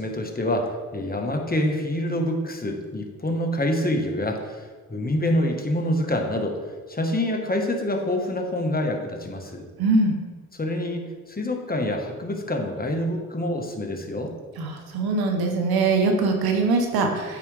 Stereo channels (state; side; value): normal; both; correlation 0.38